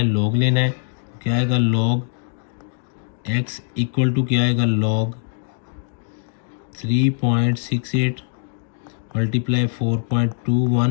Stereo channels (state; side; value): silent; right; digital silence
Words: लॉग लेना है। क्या आएगा, लॉग x इक्वल टू क्या आएगा, लॉग 3.68 मल्टीप्लाई